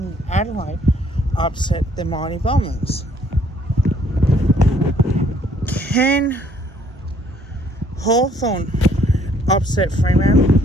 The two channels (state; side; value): normal; both; correlation 0.63